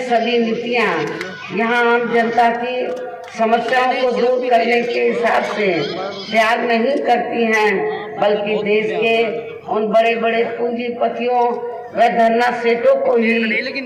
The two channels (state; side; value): identical; both; correlation 1.00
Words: सभी नीतियां यहाँ आम जनता की समस्याओं को दूर करने के हिसाब से त्याग नहीं करती हैं, बल्कि देश के उन बड़े बड़े पूंजीपतियों व धरना सेठों को